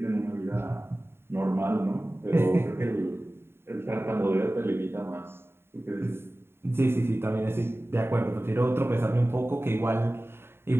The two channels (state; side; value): late; left; 0.11 ms